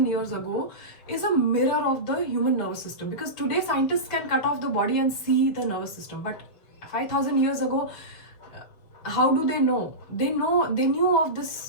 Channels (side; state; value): right; late; 6.7 ms